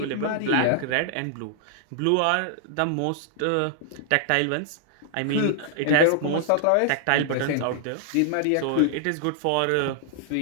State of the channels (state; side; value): different; both; correlation -0.01